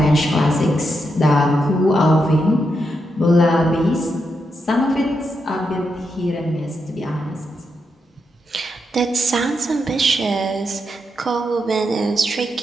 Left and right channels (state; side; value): normal; both; correlation 0.83